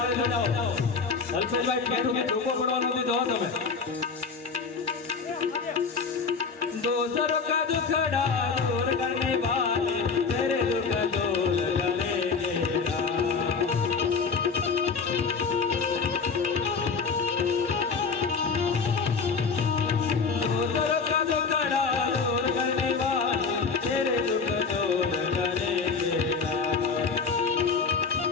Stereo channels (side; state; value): right; quieter; 5.0 dB